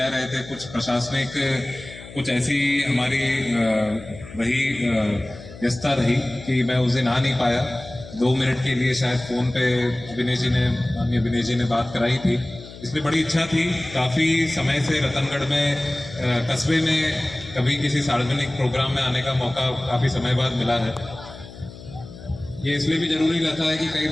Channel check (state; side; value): noise; left; hum, 16 dB below the sound